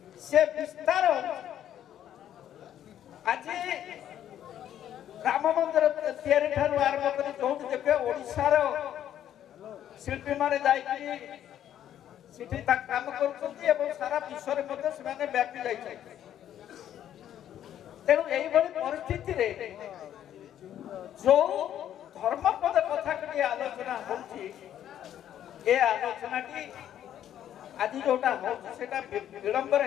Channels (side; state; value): right; quieter; 10.8 dB